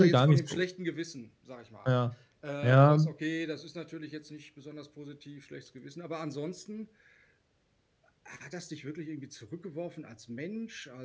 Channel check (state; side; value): identical; both; correlation 1.00